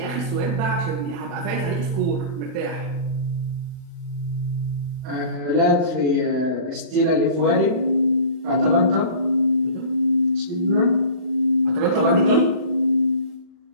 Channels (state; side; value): late; left; 39 ms